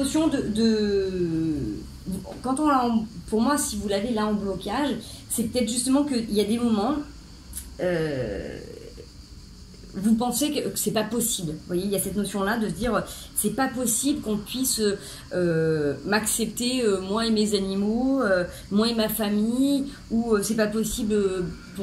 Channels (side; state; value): both; identical; correlation 1.00